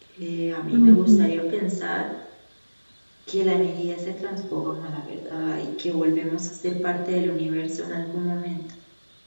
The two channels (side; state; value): both; inverted; correlation -1.00